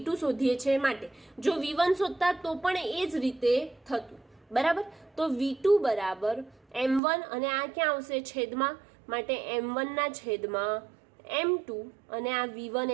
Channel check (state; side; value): drops out; left; at 7.0 s